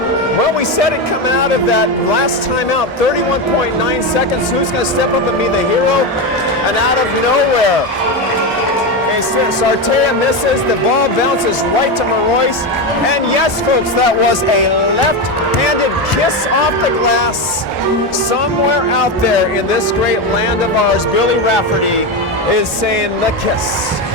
Well, we said it coming out of that last timeout, 31.9 seconds. Who's going to step up and be the hero? And out of nowhere, Sartea misses. The ball bounces right to Marois. And yes, folks, that was a left-handed kiss off the glass. Somewhere out there in this great land of ours, Billy Rafferty is saying the kiss.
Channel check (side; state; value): both; normal; correlation 0.14